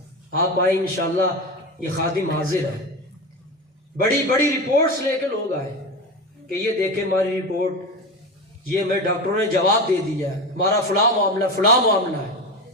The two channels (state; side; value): normal; both; correlation 0.23